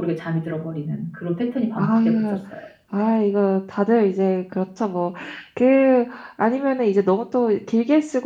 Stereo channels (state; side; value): identical; both; correlation 1.00